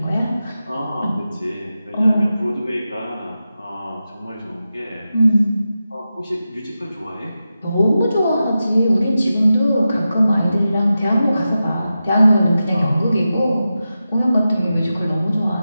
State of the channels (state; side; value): inverted; both; correlation -0.92